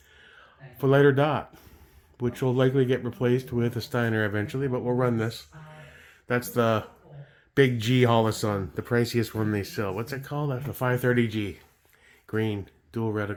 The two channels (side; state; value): both; identical; correlation 1.00